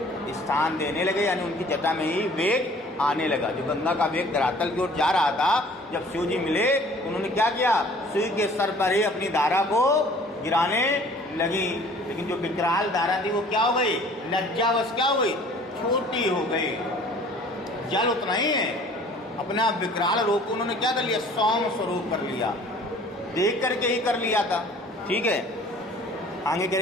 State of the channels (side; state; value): both; normal; correlation 0.51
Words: स्थान देने लगे, यानी उनकी जटा में ही वेग आने लगा। जो गंगा का वेग धरातल की ओर जा रहा था, जब शिव जी मिले उन्होंने क्या किया, शिव के सर पर ही अपनी धारा को गिराने लगी। लेकिन जो विकराल धारा थी वो क्या हो गई, लज्जावश क्या हो गई, छोटी हो गई। जल उतना ही है, अपना विकराल रूप उन्होंने क्या कर लिया, सौम्य स्वरूप कर लिया, देख करके ही कर लिया था। ठीक है, आगे कह